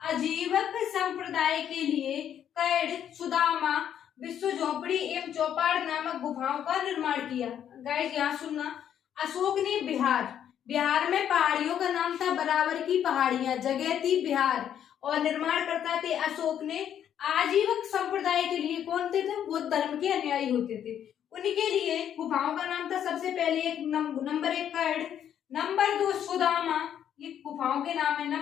आजीवक संप्रदाय के लिए कैड, सुदामा, विश्व झोपड़ी एवं चौपाड़ नामक गुफाओं का निर्माण किया। गाइस यहाँ सुनना, अशोक ने बिहार में पहाड़ियों का नाम था बराबर की पहाड़ियां, जगह थी बिहार, और निर्माण करता थे अशोक ने आजीवक संप्रदाय के लिए। कौन थे? बौद्ध धर्म के अनुयायी होते थे, उनके लिए गुफाओं का नाम था सबसे पहले नंबर 1 कैड, नंबर 2 सुदामा, ये गुफाओं के नाम है,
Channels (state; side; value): quieter; right; 9.6 dB